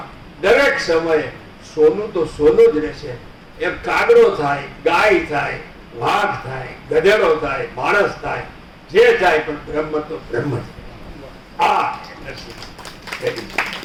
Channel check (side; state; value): both; identical; correlation 1.00